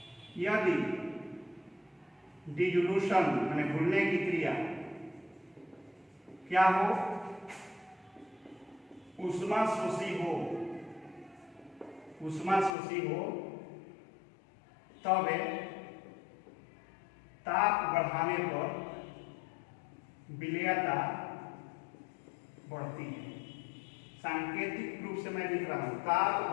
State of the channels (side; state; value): right; drops out; at 12.8 s